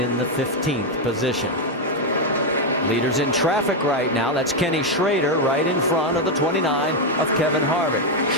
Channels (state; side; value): normal; both; correlation 0.04